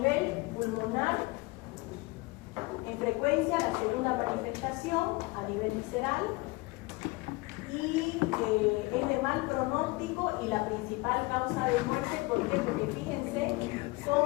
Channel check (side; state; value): right; quieter; 23.8 dB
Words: pulmonar, en frecuencia, la segunda manifestación a nivel visceral y es de mal pronóstico y la principal causa de muerte. ¿Por qué? Porque fíjense